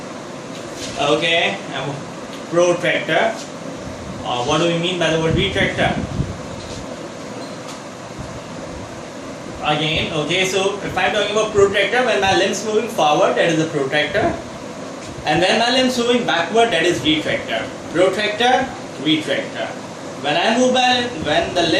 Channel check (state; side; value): identical; both; correlation 1.00